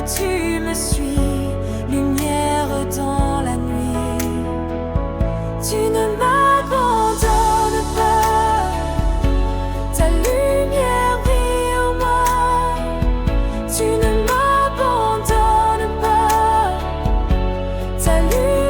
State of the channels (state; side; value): identical; both; correlation 1.00